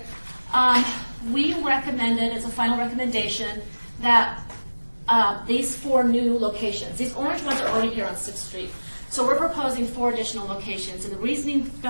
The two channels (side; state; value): both; inverted; correlation -1.00